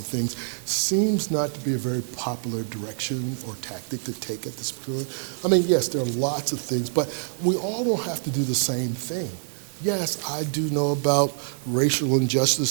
things, seems not to be a very popular direction or tactic to take at this point. I mean, yes, there are lots of things, but we all don't have to do the same thing. Yes, I do know about racial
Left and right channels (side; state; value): left; silent; digital silence